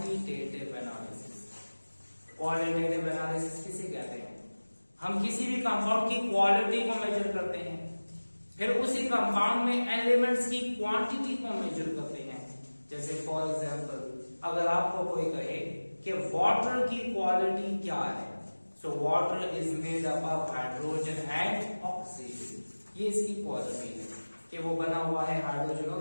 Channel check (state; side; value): inverted; both; correlation -1.00